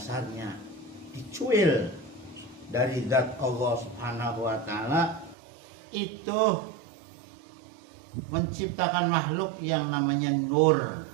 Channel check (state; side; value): drops out; left; at 5.4 s